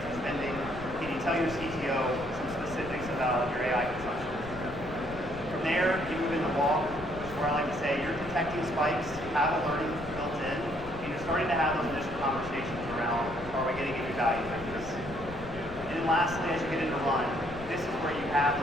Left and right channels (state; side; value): noise; left; rumble, 14 dB below the sound